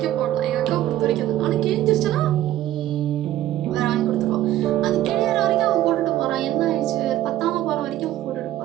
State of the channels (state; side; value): quieter; left; 13.5 dB